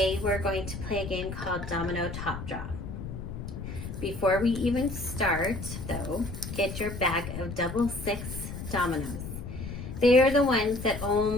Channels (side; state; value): left; noise; rumble, 8 dB below the sound